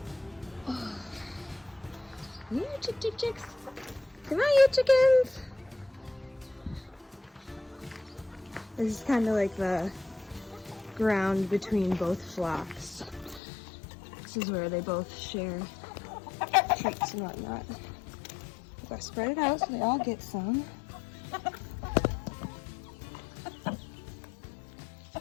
Oh. Yeah, chicks. Come on, you chickens. This is kind of like the ground between both flocks. This is where they both share treats and whatnot. I'm gonna spread it out so they all get some.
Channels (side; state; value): right; drops out; at 13.4 s